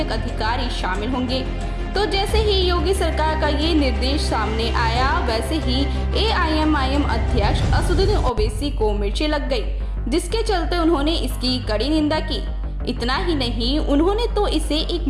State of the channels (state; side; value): identical; both; correlation 1.00